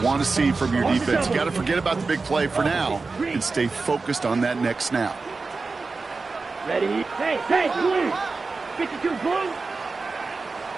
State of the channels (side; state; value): left; quieter; 4.1 dB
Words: want to see from your defense. You got to forget about the big play for now and stay focused on that next snap. Ready? Hey, blue! 52 blue!